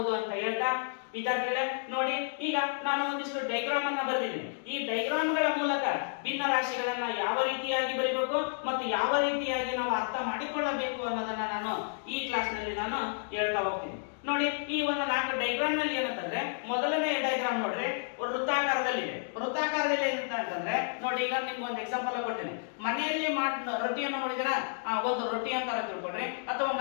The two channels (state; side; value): silent; right; digital silence